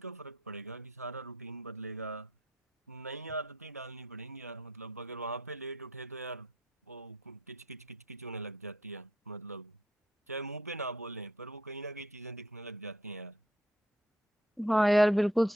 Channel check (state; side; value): normal; both; correlation 0.70